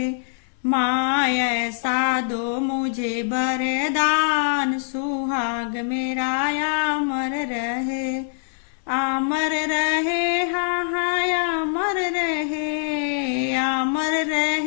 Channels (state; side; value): silent; right; 63 dB below the other